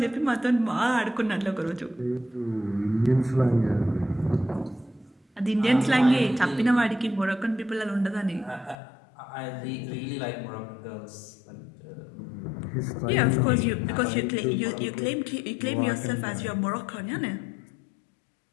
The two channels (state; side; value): drops out; right; at 8.8 s